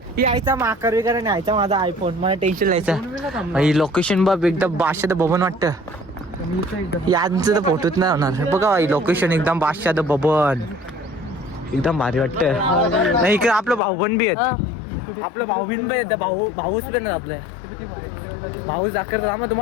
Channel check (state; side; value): drops out; right; at 13.8 s